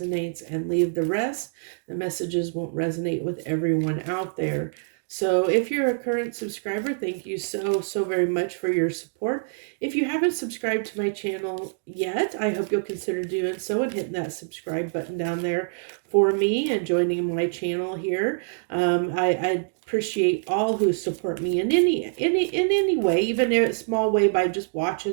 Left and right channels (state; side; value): silent; left; digital silence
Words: and leave the rest. The messages won't resonate with everyone out there. So if you're a current subscriber, thank you so very much for your support. If you haven't subscribed to my channel yet, I hope you'll consider doing so and hitting that subscribe button down there for me and joining my channel here. I appreciate all who support me in any way, even in a small way, by just